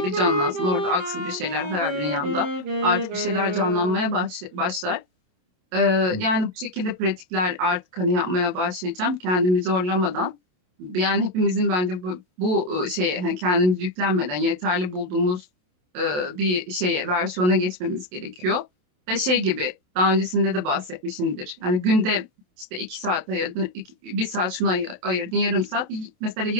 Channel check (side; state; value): left; late; 28 ms